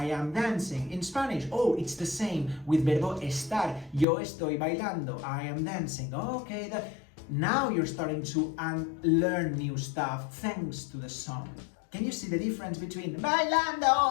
am dancing. In Spanish, oh, it's the same with verbo estar. Yo estoy bailando. I am dancing. Okay, now you're starting to learn new stuff thanks to the song. Can you see the difference between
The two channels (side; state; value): right; drops out; at 4.0 s